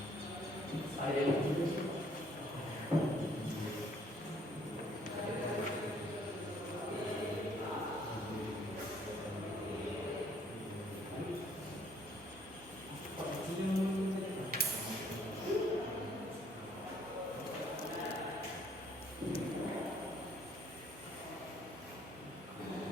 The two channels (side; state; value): both; normal; correlation 0.63